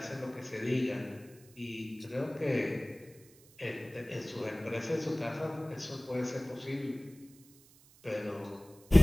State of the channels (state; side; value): noise; right; hiss, 25 dB below the sound